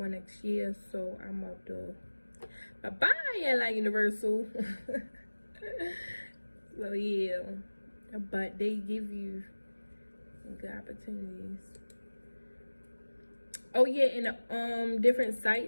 next year, so I'm about to bye-bye LI Universal. So yeah, but they give you good opportunities. Oh yeah, and different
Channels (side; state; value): both; inverted; correlation -1.00